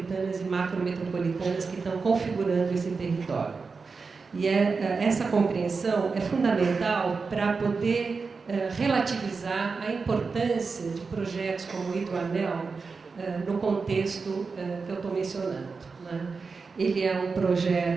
e macrometropolitanas que estão configurando esse território. E essa compreensão é fundamental para poder relativizar a importância de projetos como o Hidroanel no contexto que eu estou mencionando. Né? Ele é um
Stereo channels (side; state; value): left; quieter; 4.7 dB